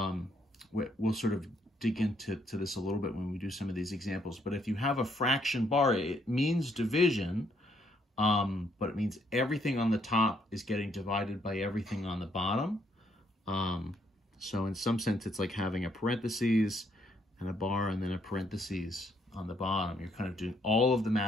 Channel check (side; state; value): both; normal; correlation 0.70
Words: sort of dig into this a little bit when we do some of these examples. But if you have a fraction bar, it means division, but it means everything on the top is getting divided by everything on the bottom. So in some sense, it's like having a parentheses and a bar and then a parentheses on the bottom. You're kind of doing all of the